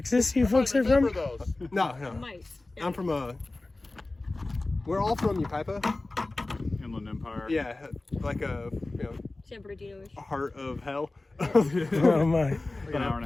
you folks are from? Remember those. No. Mice. I'm from we're all from Upaipa. Inland Empire. Yeah, like San Bernardino-ish. a heart of hell. Oh my. Like an hour and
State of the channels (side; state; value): right; quieter; 3.0 dB